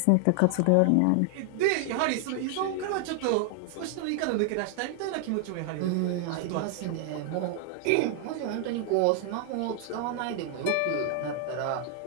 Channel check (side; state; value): both; different; correlation 0.00